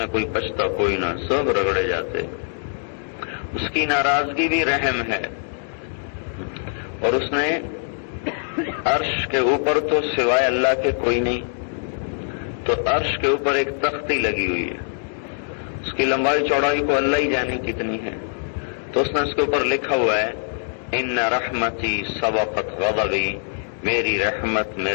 کوئی بچتا کوئی نہ، سب رگڑے جاتے۔ اس کی ناراضگی بھی رحم ہے، اور اس نے عرش کے اوپر تو سوائے اللہ کے کوئی نہیں، تو عرش کے اوپر ایک تختی لگی ہوئی ہے، اس کی لمبائی چوڑائی کو اللہ ہی جانے کتنی ہے، تو اس نے اس کے اوپر لکھا ہوا ہے ان رحمتی سبقت غضبی، میری رحمت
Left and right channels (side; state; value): right; silent; digital silence